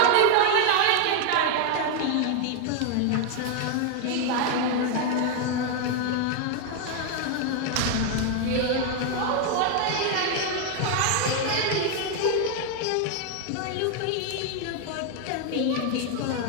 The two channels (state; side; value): different; both; correlation 0.00